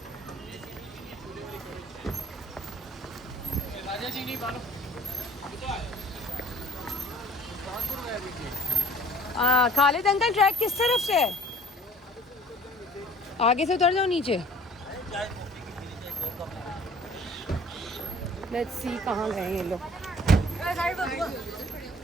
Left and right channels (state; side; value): normal; both; correlation 0.51